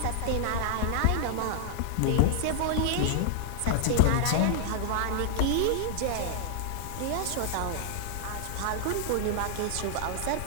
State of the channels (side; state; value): both; different; correlation -0.01